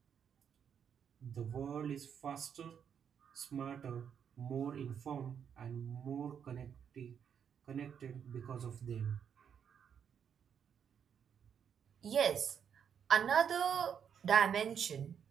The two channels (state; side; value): quieter; left; 7.8 dB